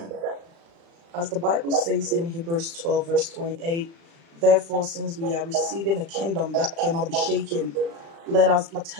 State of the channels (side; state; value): left; late; 36 ms